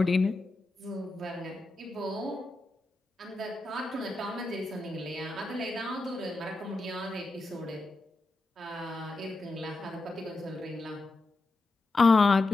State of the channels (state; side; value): quieter; right; 3.0 dB